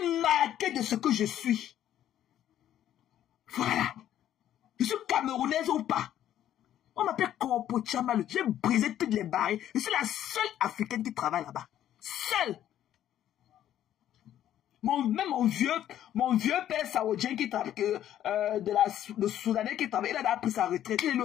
marqué de ce que je suis. Voilà. Je suis camerounaise ou pas. On m'appelle Corpo Tchamalu. J'ai brisé toutes les barrières. Je suis la seule africaine qui travaille là-bas. Seule. Même mon vieux père saoudien qui travaille, le Soudanais qui travaille, il a pris sa retraite, il est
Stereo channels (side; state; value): right; quieter; 11.5 dB